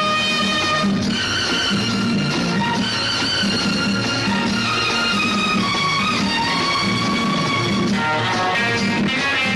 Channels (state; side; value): identical; both; correlation 1.00